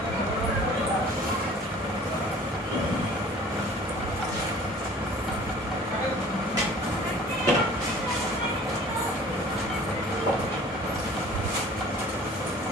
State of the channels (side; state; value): both; normal; correlation 0.48